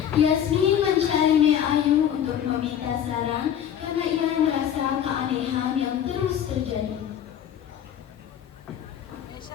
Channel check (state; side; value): quieter; right; 9.7 dB